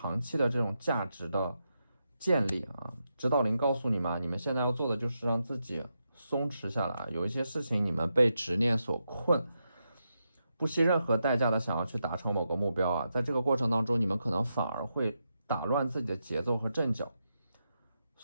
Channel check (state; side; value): inverted; both; correlation -0.85